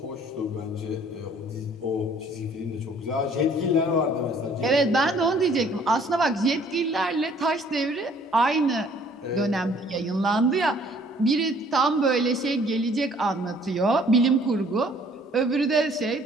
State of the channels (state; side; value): normal; both; correlation 0.58